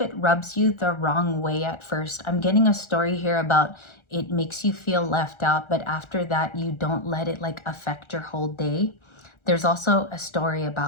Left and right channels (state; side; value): late; right; 1.4 ms